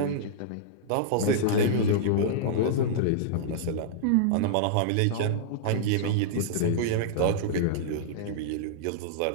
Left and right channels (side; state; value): both; different; correlation -0.02